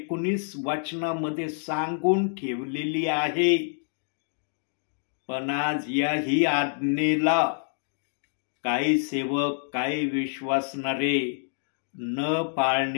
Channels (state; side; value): silent; right; digital silence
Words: वचनामध्ये सांगून ठेवलेली आहे. पण आज याही आज्ञेला काही सेवक, काही विश्वासणारे न